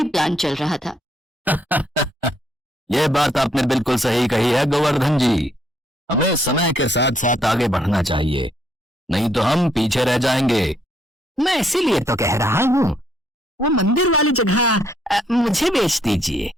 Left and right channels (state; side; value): normal; both; correlation 0.71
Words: प्लान चल रहा था। ये बात आपने बिल्कुल सही कही है गोवर्धन जी। हमें समय के साथ साथ आगे बढ़ना चाहिए, नहीं तो हम पीछे रह जाएंगे। मैं इसीलिए तो कह रहा हूँ, वो मंदिर वाली जगह मुझे बेच दीजिए।